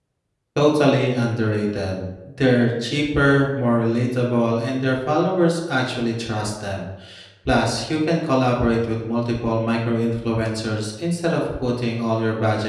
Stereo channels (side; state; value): both; identical; correlation 1.00